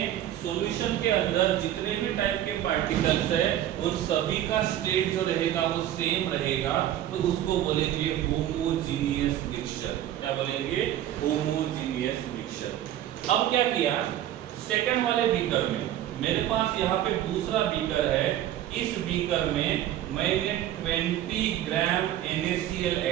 सॉल्यूशन के अंदर जितने भी टाइप के पार्टिकल्स है उन सभी का स्टेट जो रहेगा वो सेम रहेगा, तो उसको बोलेंगे होमोजीनियस मिक्सचर। क्या बोलेंगे? Homogeneous mixture. अब क्या किया, सेकंड वाले बीकर में मेरे पास यहाँ पे दूसरा बीकर है, इस बीकर में मैंने 20 ग्राम NaCl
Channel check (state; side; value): quieter; left; 12.1 dB